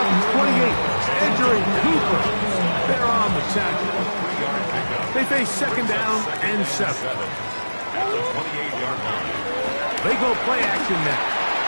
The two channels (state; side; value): inverted; both; correlation -1.00